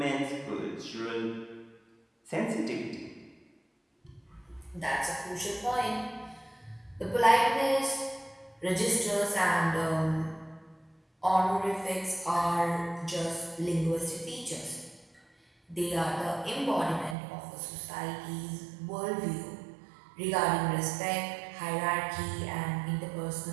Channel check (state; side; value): drops out; left; at 17.2 s